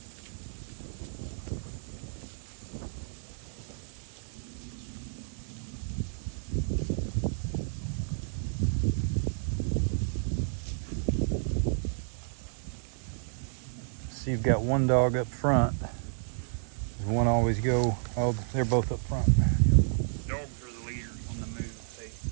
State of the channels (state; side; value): silent; left; 57 dB below the other